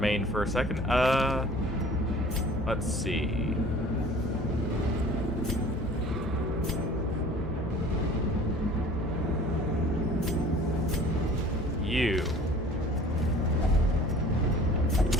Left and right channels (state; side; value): normal; both; correlation 0.47